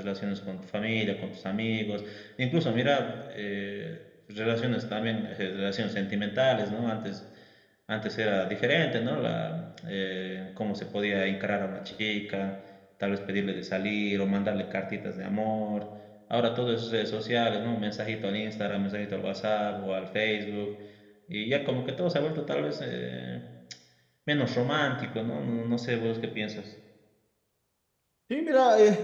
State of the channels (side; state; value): both; identical; correlation 1.00